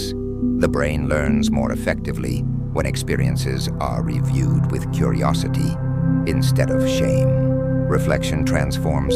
The brain learns more effectively when experiences are reviewed with curiosity instead of shame. Reflection transforms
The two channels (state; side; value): identical; both; correlation 1.00